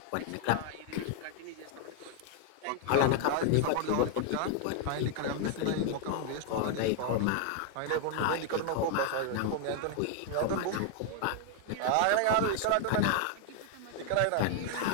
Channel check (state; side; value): different; both; correlation 0.00